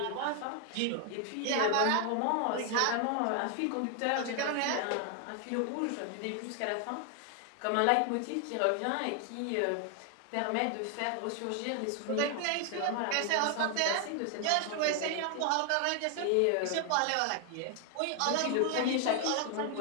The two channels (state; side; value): different; both; correlation 0.00